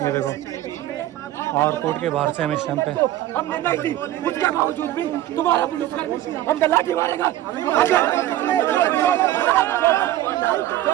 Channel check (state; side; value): quieter; left; 14.1 dB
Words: ये देखो। और कोर्ट के बाहर से हम इस टाइम पे, हमने नहीं दी, उसके बावजूद भी तुम्हारा पुलिसकर्मी हम लाठी मारेगा।